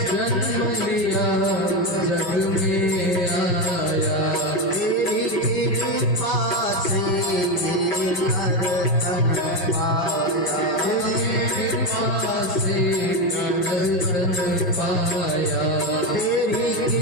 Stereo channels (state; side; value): late; right; 5.8 ms